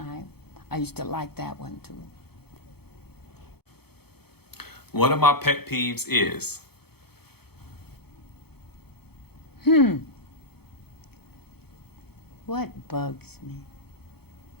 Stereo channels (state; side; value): late; right; 0.96 ms